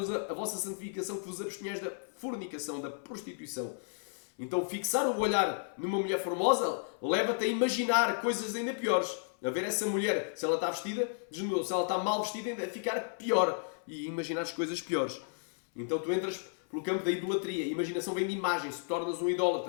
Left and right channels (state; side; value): silent; right; 56 dB below the other